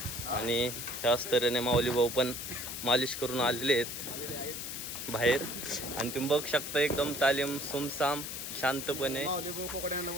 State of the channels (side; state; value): left; noise; hiss, 6 dB below the sound